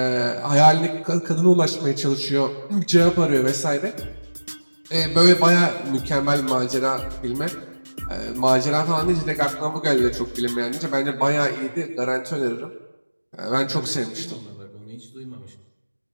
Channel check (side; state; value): both; inverted; correlation -1.00